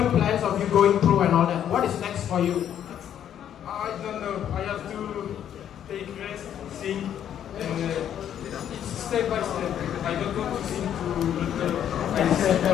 plans of you going pro and all that. What is next for you? I don't know. I have to take rest, sing, and it's step by step. I don't want to sing to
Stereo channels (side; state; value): right; quieter; 9.9 dB